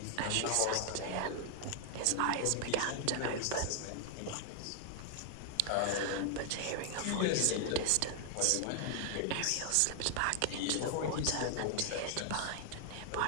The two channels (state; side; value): different; both; correlation 0.00